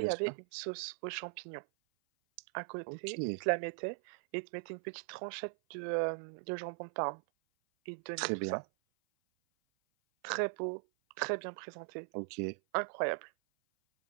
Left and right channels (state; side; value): silent; left; 51 dB below the other